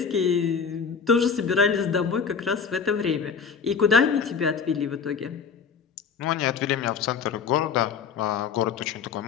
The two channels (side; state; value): right; quieter; 6.2 dB